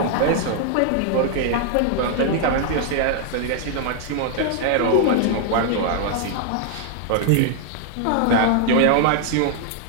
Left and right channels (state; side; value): different; both; correlation 0.00